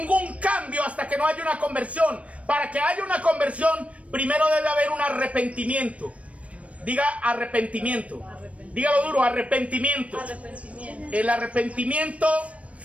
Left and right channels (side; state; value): left; late; 0.064 ms